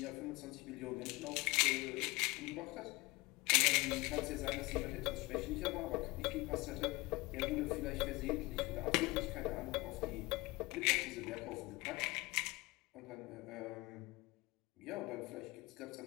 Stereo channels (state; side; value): quieter; right; 22.9 dB